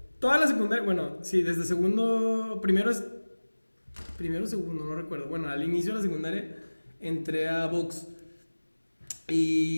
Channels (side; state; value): both; inverted; correlation -1.00